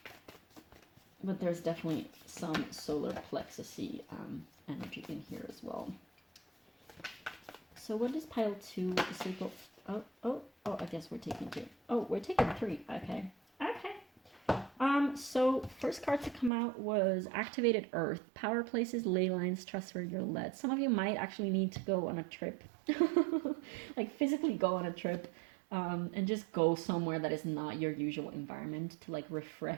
But there's definitely some solar plexus-y energy in here as well. So what is pile 2? The sacral. Oh, I guess we're taking 2. Oh, we're taking 3. Okay. So first card to come out was Activated Earth. Power places, ley lines, trust where you're led. Some of you might actually need to go on a trip. Like physically go on a trip and just go somewhere that is not your usual environment to like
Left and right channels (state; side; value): drops out; left; at 16.5 s